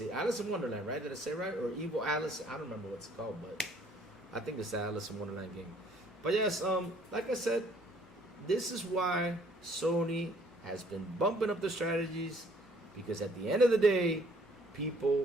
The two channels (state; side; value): normal; both; correlation 0.61